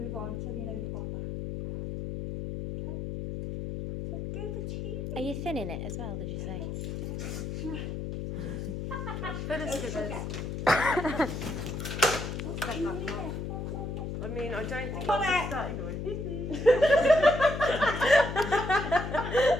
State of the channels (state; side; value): noise; left; hum, 5 dB below the sound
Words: on until you know you've got that. Okay? So go for tea. Are you thinning it as well, did you say? Okay. I mean, I don't think Come I'll on. just start going.